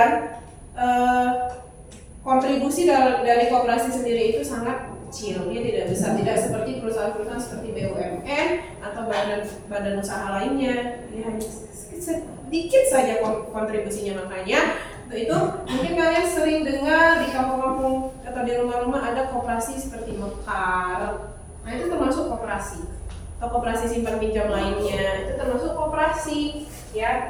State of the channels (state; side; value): identical; both; correlation 1.00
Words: kontribusi dari koperasi sendiri itu sangat kecil, dia tidak besar, tidak seperti perusahaan-perusahaan seperti BUMN atau badan usaha lainnya, dia hanya sedikit saja kontribusinya. Makanya untuk itu mungkin kalian sering dengar di kampung-kampung atau di rumah-rumah ada koperasi seperti Mekar. Nah itu termasuk koperasi, atau koperasi simpan pinjam lainnya itu termasuk koperasi